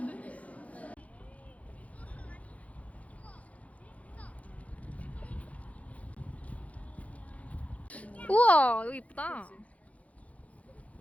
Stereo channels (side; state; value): right; late; 0.067 ms